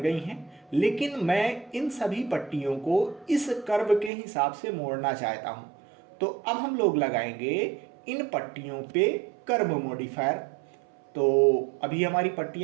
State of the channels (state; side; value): drops out; left; at 4.1 s